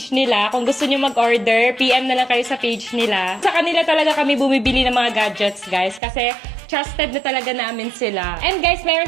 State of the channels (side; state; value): left; drops out; at 6.0 s